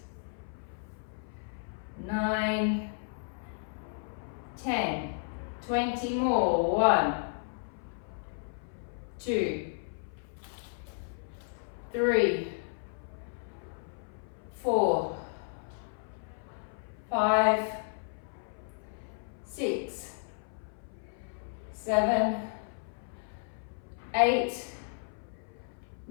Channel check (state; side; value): silent; right; 55 dB below the other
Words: 9, 10. 20 more. 1, 2, 3, 4, 5, 6, 7, 8,